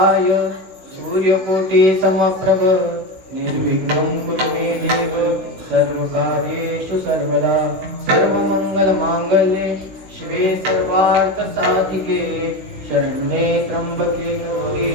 सूर्यकोटि समप्रभ निर्विघ्नं कुरु मे देव सर्वकार्येषु सर्वदा सर्वमंगलमांगल्ये शिवे सर्वार्थ साधिके शरण्ये त्र्यंबके गौरी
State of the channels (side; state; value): left; late; 16 ms